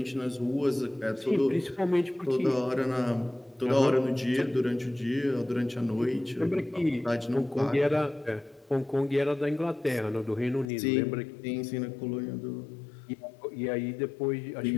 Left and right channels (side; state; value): right; drops out; at 10.7 s